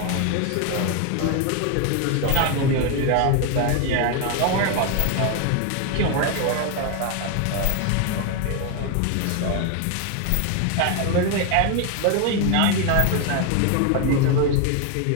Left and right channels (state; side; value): different; both; correlation 0.01